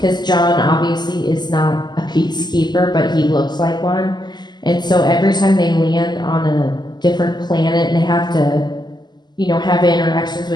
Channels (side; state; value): right; late; 0.21 ms